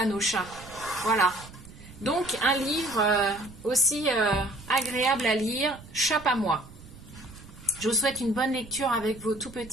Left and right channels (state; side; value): noise; right; rumble, 18 dB below the sound